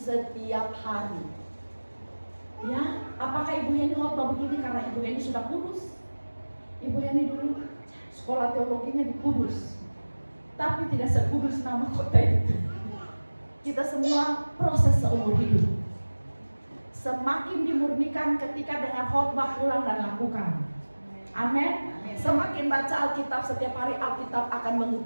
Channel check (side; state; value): both; inverted; correlation -1.00